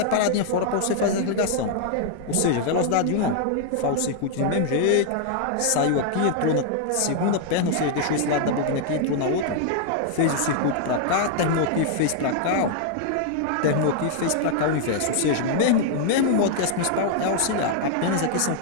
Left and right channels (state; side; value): different; both; correlation 0.00